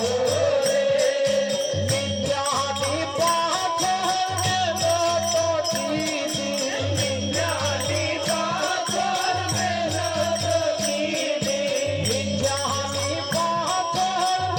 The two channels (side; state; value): both; identical; correlation 1.00